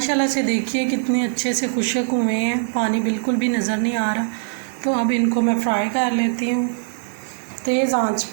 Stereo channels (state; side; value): silent; left; digital silence